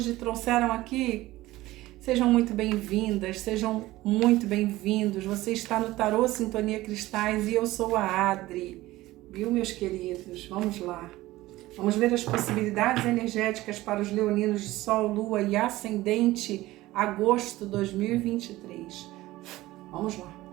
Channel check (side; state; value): left; quieter; 17.5 dB